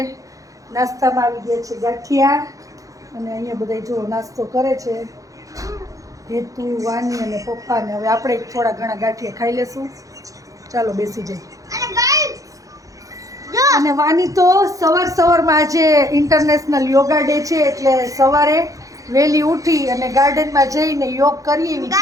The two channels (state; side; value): late; left; 0.16 ms